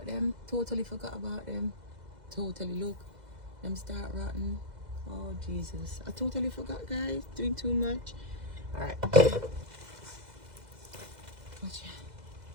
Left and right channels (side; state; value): left; late; 2.0 ms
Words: them. Totally forgot about them. Totally. Look, them start rotting. Oh, Jesus. I totally forgot, guys. Doing too much. All right. Watch